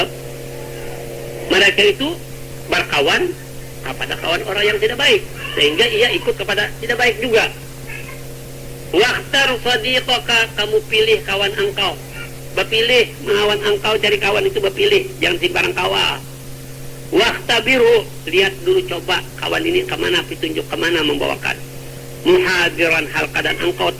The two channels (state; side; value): identical; both; correlation 1.00